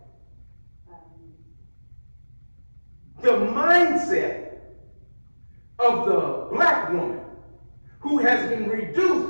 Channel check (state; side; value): inverted; both; correlation -1.00